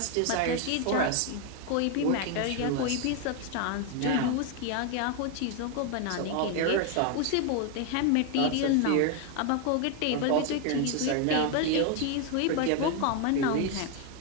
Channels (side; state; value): both; different; correlation 0.01